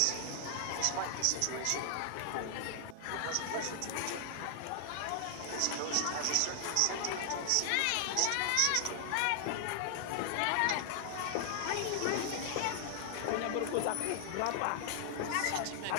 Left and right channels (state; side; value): different; both; correlation 0.00